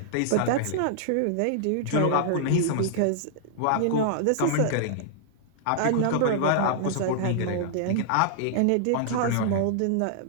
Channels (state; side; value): different; both; correlation -0.01